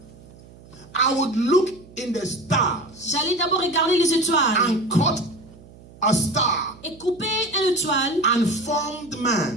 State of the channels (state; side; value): noise; right; hum, 22 dB below the sound